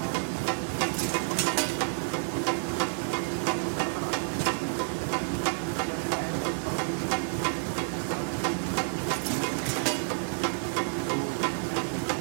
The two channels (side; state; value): left; silent; digital silence